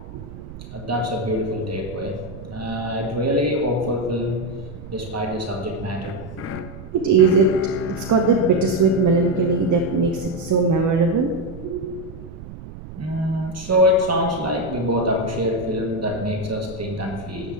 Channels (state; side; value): noise; right; rumble, 14 dB below the sound